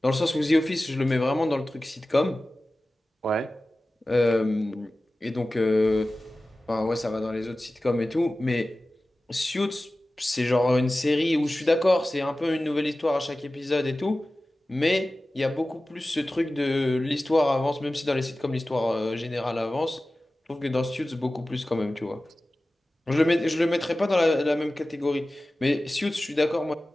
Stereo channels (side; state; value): both; normal; correlation 0.96